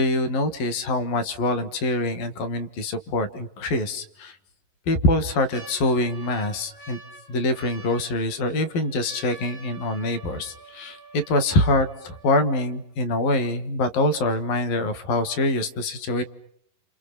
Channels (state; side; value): late; right; 11 ms